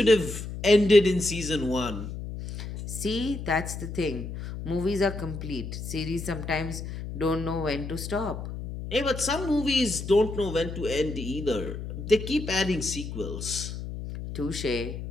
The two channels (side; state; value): left; noise; hum, 8 dB below the sound